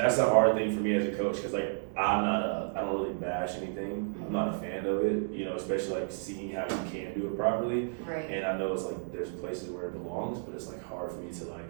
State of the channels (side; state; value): left; silent; digital silence